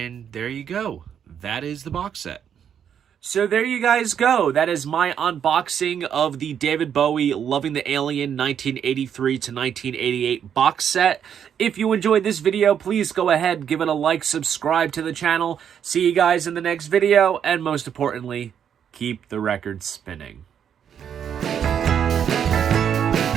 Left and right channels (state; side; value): quieter; left; 8.5 dB